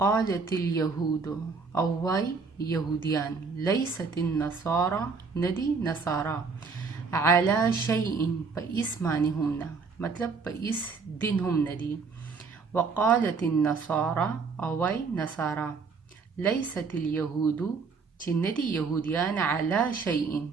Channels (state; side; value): quieter; left; 4.9 dB